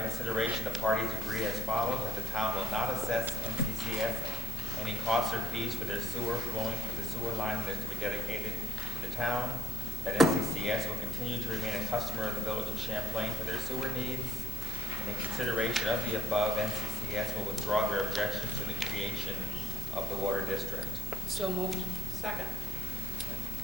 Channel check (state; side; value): normal; both; correlation 0.64